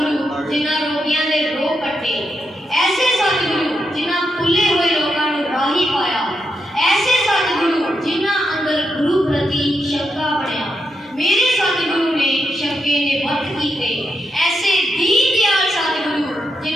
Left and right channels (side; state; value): both; normal; correlation 0.84